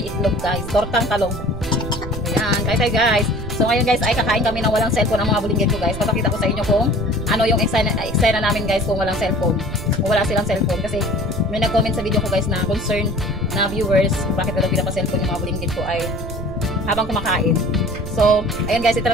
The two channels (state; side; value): noise; right; rumble, 10 dB below the sound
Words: itlog guys. Tortang talong. Ayan, guys. So ngayon guys, ay kakain kami ng walang cellphone ang mga bulinggit ko guys. Papakita ko sa inyo kung ano yung eksena namin guys kung walang cellphone. Kung wala silang cellphone. Kasi may nag-comment sa video ko guys na concern na viewers kung bakit wala pinapa-cellphone yung mga bulinggit ko ay habang kumakain. So, ayan guys,